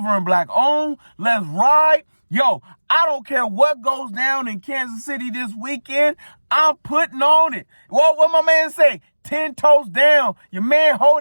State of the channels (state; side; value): inverted; both; correlation -1.00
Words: and black on. Let's ride. Yo, I don't care what goes down in Kansas City this weekend. I'm putting on it. What my man say? 10 toes down. Your man